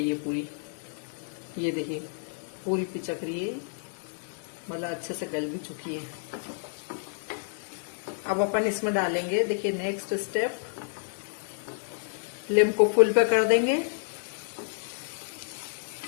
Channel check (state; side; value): silent; right; digital silence